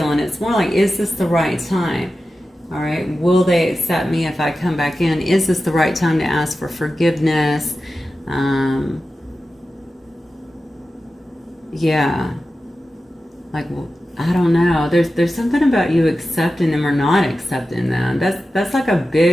It's more like, is this the right time? All right, will they accept me if I come back in? Is this the right time to ask for forgiveness? Yeah, like, well, I don't know. There's something about you accepting them or not accepting them. That's like a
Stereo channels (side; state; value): both; normal; correlation 0.93